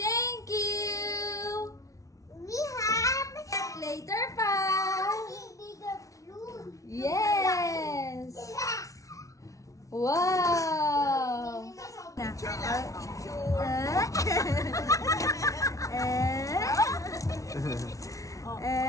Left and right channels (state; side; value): late; right; 0.16 ms